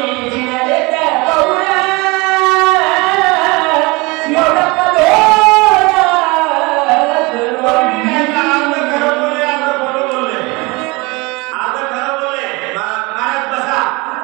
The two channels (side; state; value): left; quieter; 25.4 dB